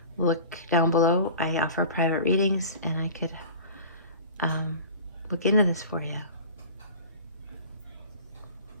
look down below. I offer private readings, and I could look into this for you.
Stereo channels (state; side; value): inverted; both; correlation -0.39